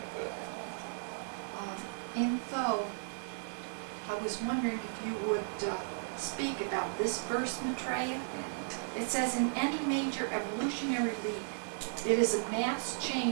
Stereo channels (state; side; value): silent; left; digital silence